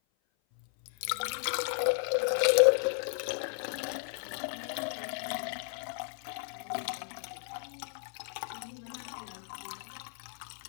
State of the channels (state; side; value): silent; right; 55 dB below the other